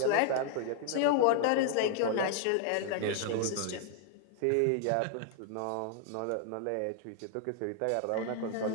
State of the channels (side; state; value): both; different; correlation 0.00